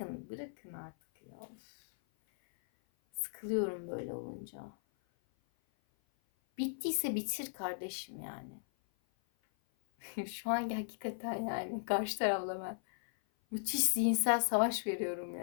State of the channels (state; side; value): silent; right; 53 dB below the other